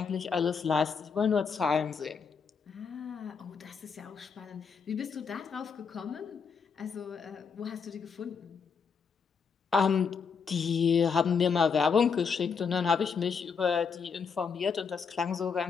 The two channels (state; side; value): quieter; right; 5.9 dB